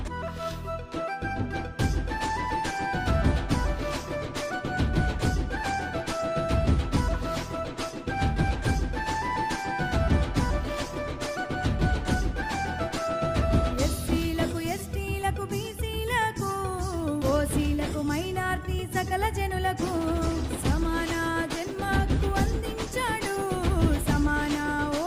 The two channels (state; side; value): identical; both; correlation 1.00